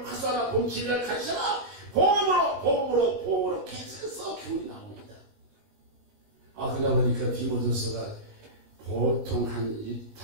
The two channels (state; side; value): late; left; 19 ms